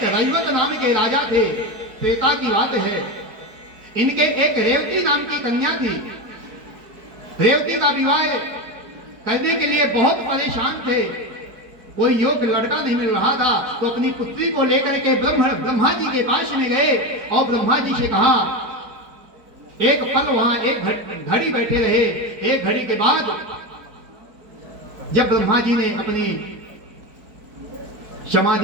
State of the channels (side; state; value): left; late; 4.6 ms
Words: रैवत नाम के राजा थे, त्रेता की बात है। इनके एक रेवती नाम की कन्या थी। रेवती का विवाह करने के लिए बहुत परेशान थे, कोई योग्य लड़का नहीं मिल रहा था, तो अपनी पुत्री को लेकर के ब्रह्मा जी के पास में गए और ब्रह्मा जी से कहा। एक पल वहां एक घड़ी बैठे रहे। एक घड़ी के बाद जब ब्रह्मा जी ने अपनी